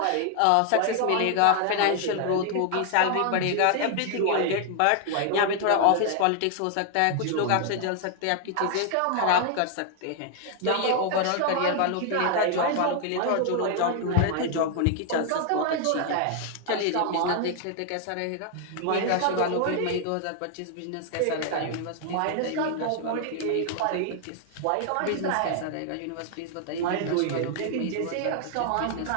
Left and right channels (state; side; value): different; both; correlation 0.00